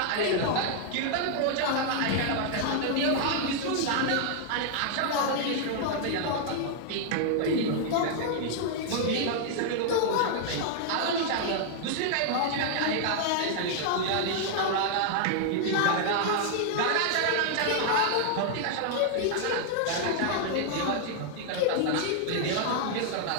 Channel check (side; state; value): both; different; correlation 0.00